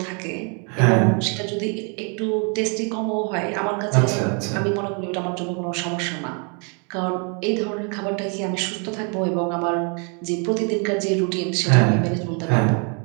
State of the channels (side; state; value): left; quieter; 37.2 dB